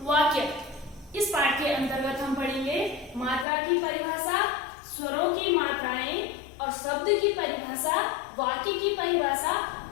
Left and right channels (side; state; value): right; drops out; at 3.5 s